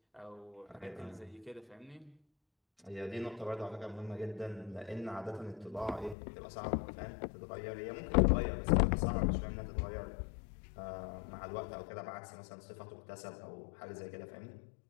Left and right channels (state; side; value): drops out; right; at 6.2 s